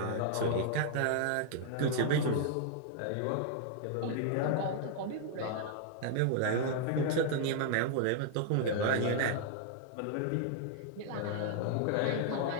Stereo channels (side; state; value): both; different; correlation 0.00